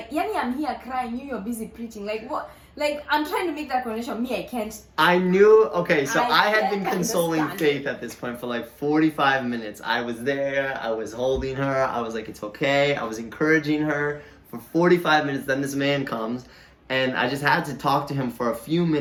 I'm here crying. You're busy preaching. Like what? Like, I'm trying to make that connection. I can't. I knew, okay, so I had can't been consoling understand. Faith at this point for like 45 minutes. I was there, I was holding her, I was like, it's okay. I was encouraging her for 45 minutes. Then this man comes, and I just had to talk to him for a few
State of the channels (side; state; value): both; identical; correlation 1.00